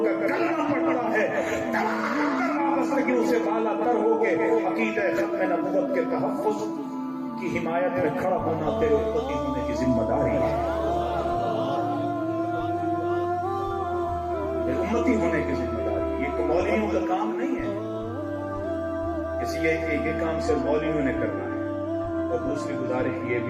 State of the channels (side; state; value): both; identical; correlation 1.00